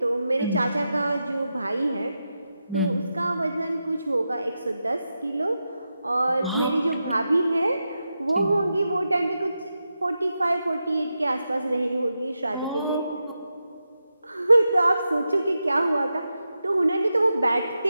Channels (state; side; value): inverted; both; correlation -0.89